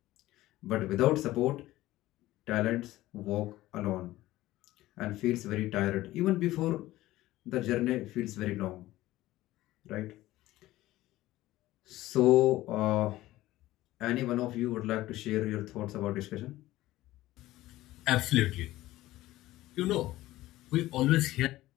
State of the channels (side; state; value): right; quieter; 16.5 dB